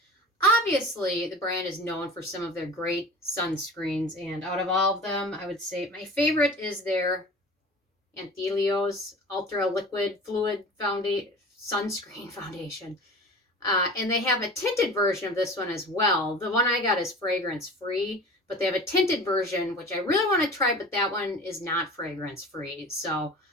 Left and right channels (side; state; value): both; normal; correlation 0.38